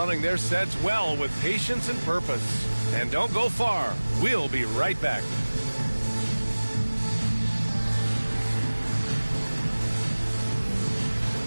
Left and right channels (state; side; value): inverted; both; correlation -1.00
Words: their sets well with patience and purpose. And don't go far. We'll be right back.